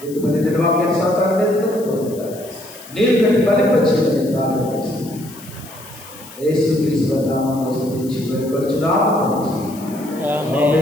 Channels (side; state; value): left; noise; hiss, 18 dB below the sound